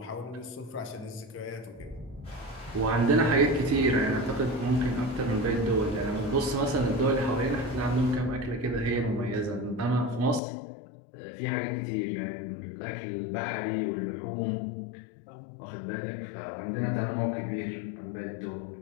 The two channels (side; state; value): right; drops out; at 10.4 s